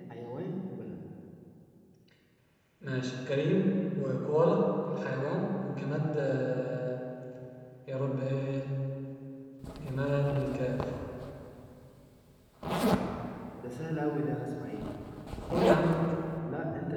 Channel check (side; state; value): both; identical; correlation 1.00